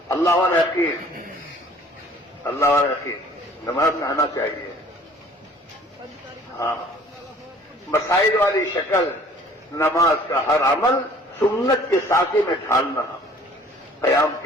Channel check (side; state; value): both; normal; correlation 0.53